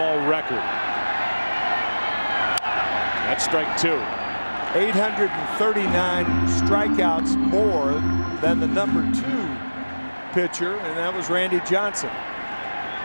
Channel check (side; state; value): both; inverted; correlation -1.00